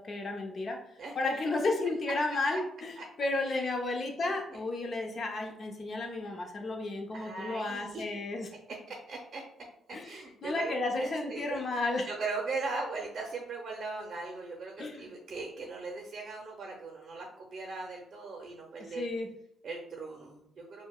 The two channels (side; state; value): both; normal; correlation 0.77